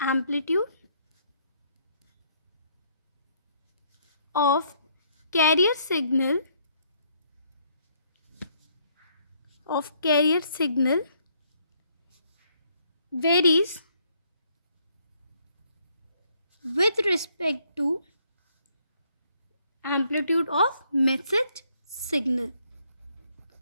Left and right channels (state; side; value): inverted; both; correlation -0.68